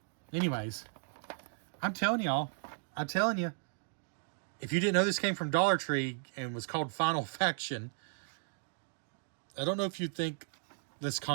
Anyways, I'm telling y'all, if you didn't know this came from Dollar Tree and was called Final Faction, I don't know if you'd think this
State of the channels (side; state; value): left; silent; digital silence